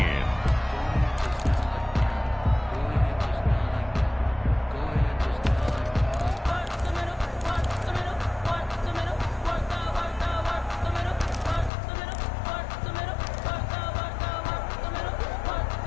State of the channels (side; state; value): right; drops out; at 11.7 s